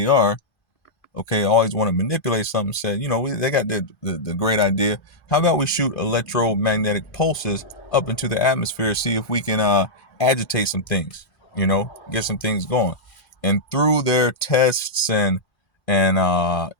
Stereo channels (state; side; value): late; right; 2.5 ms